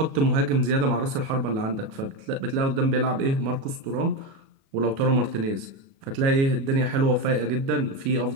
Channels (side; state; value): left; late; 37 ms